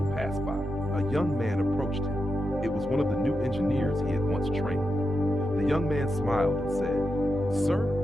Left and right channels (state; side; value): normal; both; correlation 0.87